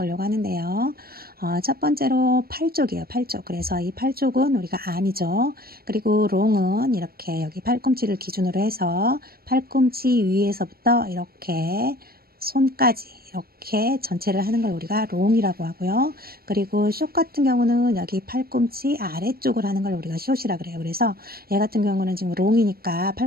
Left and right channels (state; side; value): late; left; 0.44 ms